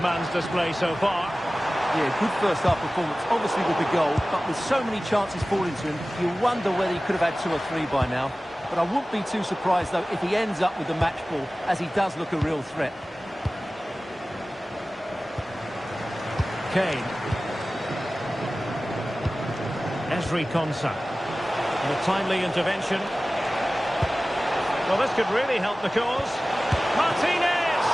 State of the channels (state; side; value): normal; both; correlation 0.97